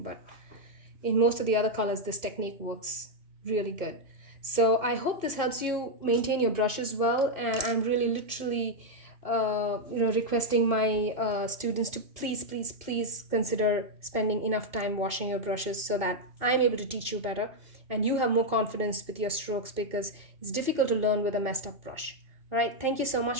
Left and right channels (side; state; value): left; late; 2.5 ms